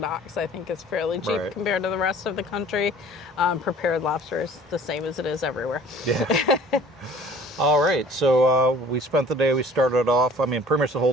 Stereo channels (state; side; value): normal; both; correlation 0.49